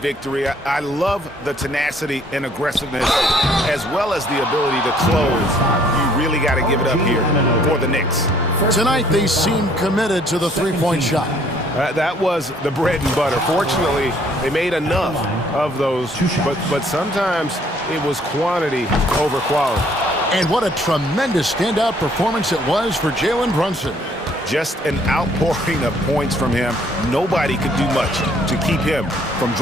I love the tenacity and aggressiveness, as well as the ability to close. You really got to give it up here for the Knicks. Tonight, they seem committed to the 3-point shot. That was the bread and butter. Fortunately, they made enough of those, but sometimes it was quantity over quality. And what a tremendous standout performance it was for Jalen Brunson. Just an outpouring of points from him. Nobody could do much to keep him from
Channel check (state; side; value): normal; both; correlation 0.62